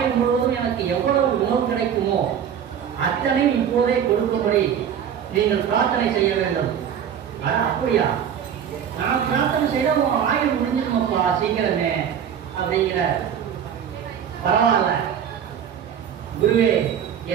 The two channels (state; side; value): quieter; left; 8.6 dB